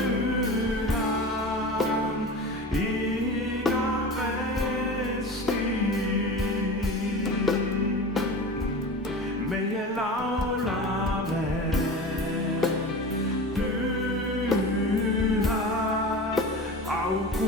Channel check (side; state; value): both; normal; correlation 0.32